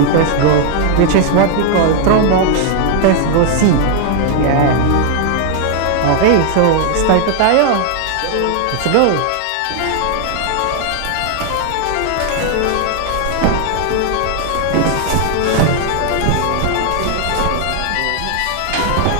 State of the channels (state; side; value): different; both; correlation 0.00